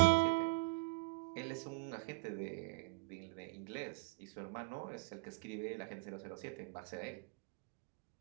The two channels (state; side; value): quieter; left; 29.6 dB